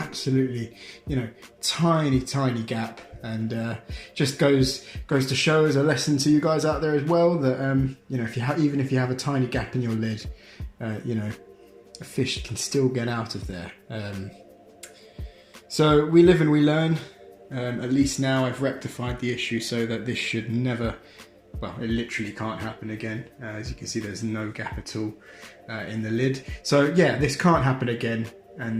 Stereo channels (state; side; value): identical; both; correlation 1.00